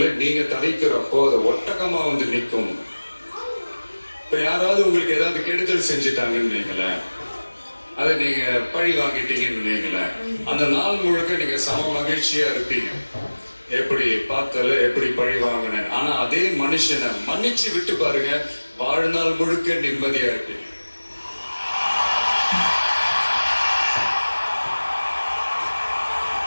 நீங்க தவிக்கிறப்போ அது ஒட்டகமா வந்து நிற்கும். இப்ப யாராவது உங்களுக்கு ஏதாவது கெடுதல் செஞ்சுட்டாங்கன்னு நீங்களேன், அதை நீங்க பழி வாங்கிட்டீங்கன்னு நீங்களேன், அந்த நாள் முழுக்க நீங்க சம மகிழ்ச்சியா இருப்பீங்க. எப்படி பார்த்தால எப்படி பழி வாங்கினேன். ஆனா அதே மனுஷனை மன்னிச்சு விட்டு பாருங்க, வாழ்நாள் முழுக்க நிம்மதியா இருப்பீங்க.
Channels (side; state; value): both; inverted; correlation -1.00